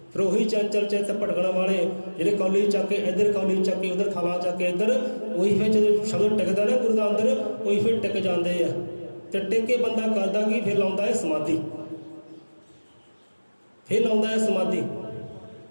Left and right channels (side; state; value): both; inverted; correlation -1.00